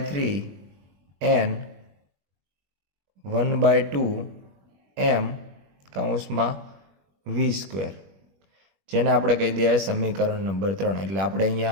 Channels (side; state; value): left; late; 21 ms